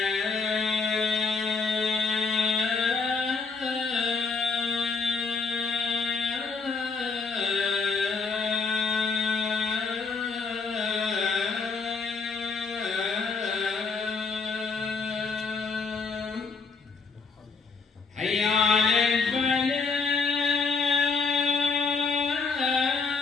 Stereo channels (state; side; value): quieter; right; 4.7 dB